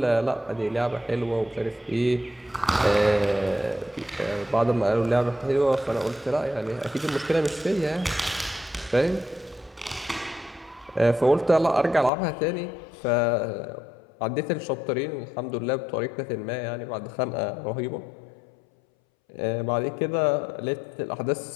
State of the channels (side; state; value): right; drops out; at 12.1 s